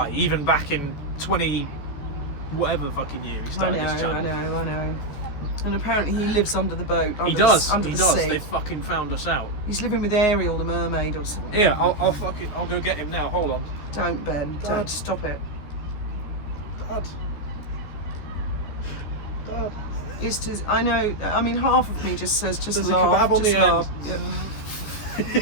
even back in 20... whatever the fucking year he started this channel. I know. And apparently he lives under the boat. Under He does. Under He the does. sea. They fucking found us out. He's living with Ariel, the mermaid, or something. Yeah, I'll go get him now. Hold on. Don't, Ben. Dad. Don't. Stop it. Dad. I know. I mean, half of me just says, just There's laugh. a kebab on just the laugh. end.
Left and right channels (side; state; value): right; late; 14 ms